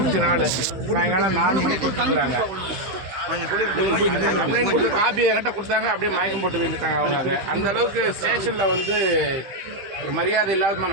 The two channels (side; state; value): left; late; 15 ms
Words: சாயங்காலம் 4 மணிக்கு கொடுத்துருக்காங்க. கம்ப்ளைண்ட் கொடுத்து காப்பி என்கிட்ட கொடுத்தாங்க. அப்படியே மயக்கம் போட்டு விழுந்துட்டாங்க அவங்க. அந்த அளவுக்கு ஸ்டேஷனில் வந்து ஒரு மரியாதை இல்லாதமா